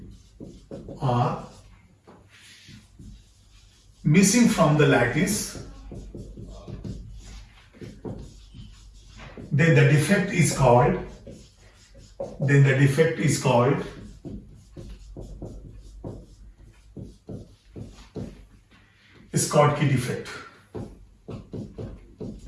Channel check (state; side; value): identical; both; correlation 1.00